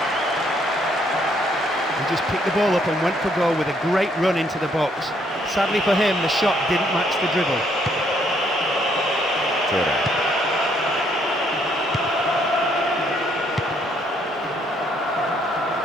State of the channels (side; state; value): both; normal; correlation 0.69